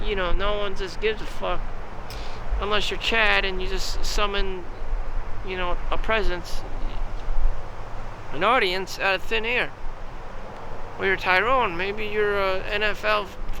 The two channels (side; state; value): both; identical; correlation 1.00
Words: you know, no one just gives a fuck unless you're Chad and you just summon, you know, a presence, an audience out of thin air. Or you're Tyrone, maybe you're an NFL